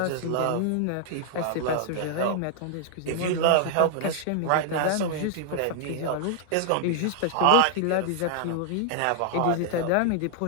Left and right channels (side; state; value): both; different; correlation -0.01